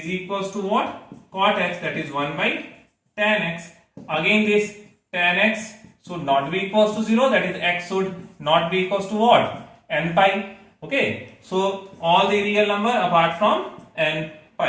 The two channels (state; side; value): identical; both; correlation 1.00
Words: equals to what? Cot x, that is 1 by tan x. Again, this tan x should not be equals to 0, that is x should not be equals to what? N pi. Okay, so all the real number apart from n